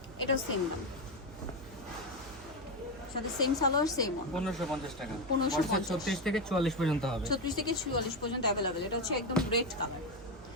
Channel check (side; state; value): both; normal; correlation 0.11